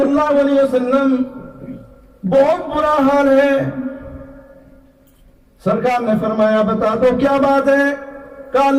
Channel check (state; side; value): identical; both; correlation 1.00